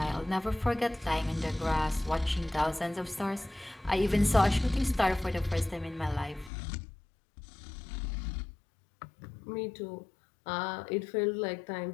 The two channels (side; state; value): right; drops out; at 6.5 s